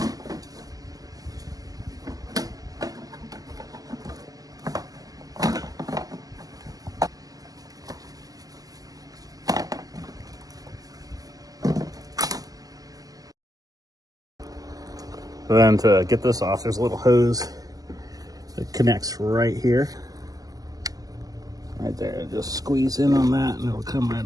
Then to get this off, there's a little hose that connects right here. Right there, just squeeze in on that and it'll come right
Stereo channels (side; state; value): left; late; 0.17 ms